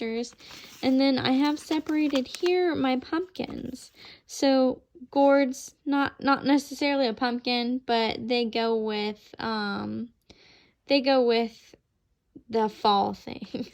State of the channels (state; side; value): identical; both; correlation 1.00